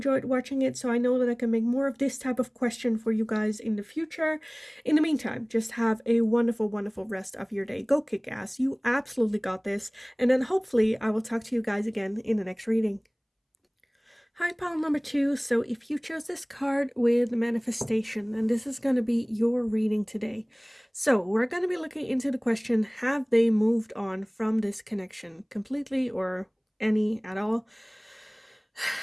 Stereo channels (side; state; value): both; identical; correlation 1.00